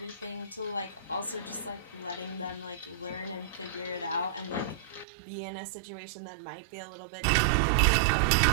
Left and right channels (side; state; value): left; drops out; at 5.1 s